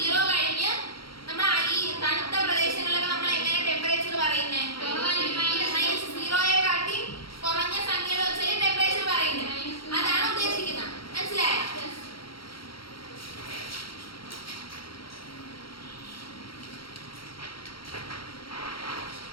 കഴിഞ്ഞ് നമ്മൾ ഈ തണുത്ത പ്രദേശങ്ങളിലൊക്കെ നമ്മൾ എങ്ങനെ ടെമ്പറേച്ചർ പറയുന്നത്? 0യെക്കാട്ടി കുറഞ്ഞ സംഖ്യകൾ വെച്ചാൽ ടെമ്പറേച്ചർ പറയുന്നത്. അതാണ് ഉദ്ദേശിക്കുന്നത്. മനസ്സിലായോ?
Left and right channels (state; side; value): late; right; 0.74 ms